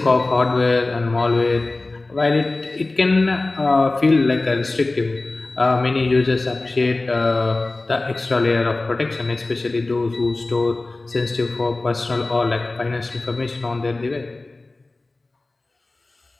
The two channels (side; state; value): right; quieter; 3.1 dB